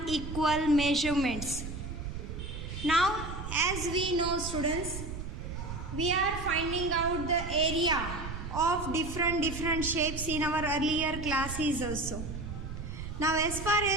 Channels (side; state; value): right; noise; rumble, 7 dB below the sound